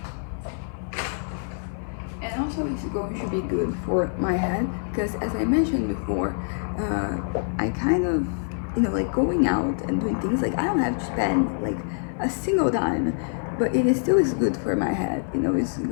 also it's going to be good for my head because, as I mentioned before, I kind of, you know, like going out and doing things, like I don't have to spend like a single dime, but it is still is good for my head, you know. It's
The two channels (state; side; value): silent; right; 56 dB below the other